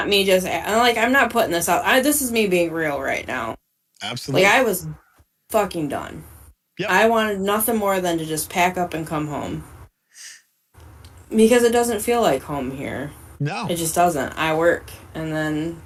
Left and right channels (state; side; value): identical; both; correlation 1.00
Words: me just like I'm not putting this out. This is me being real right now. Like absolutely. I was fucking done. Yep. I wanted nothing more than to just pack up and come home. Because it doesn't feel like home here. No. It just doesn't. I work and then